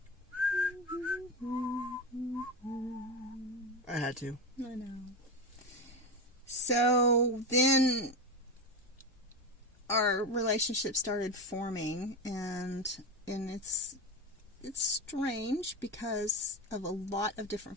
had to. I know. So then our relationship started forming, and it's strange because of a lot of different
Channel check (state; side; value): normal; both; correlation 0.17